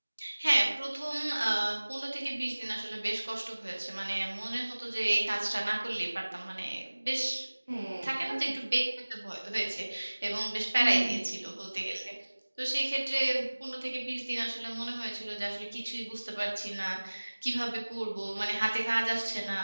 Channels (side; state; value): both; inverted; correlation -1.00